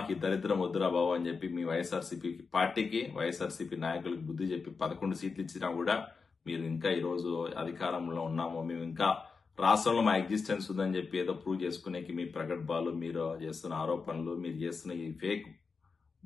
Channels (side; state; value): right; quieter; 4.9 dB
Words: ఈ దరిద్రం వద్దురా బాబు అని చెప్పి మీ వైఎస్ఆర్సీపీ పార్టీకి, వైఎస్ఆర్సీపీ నాయకులకు బుద్ధి చెప్పి 11 సీట్లు ఇచ్చినా కూడా మీరు ఇంకా ఈ రోజు అధికారంలో ఉన్నాము, మేము ఇంకా రాష్ట్రంలో మా ఎగ్జిస్టెన్స్ ఉందని చెప్పి ఏదో ప్రూవ్ చేసుకునేకి మీ ప్రగల్భాలు, మీరు చేస్తున్న ఆరోపణలు, మీరు చేస్తున్న ఈ ఫేక్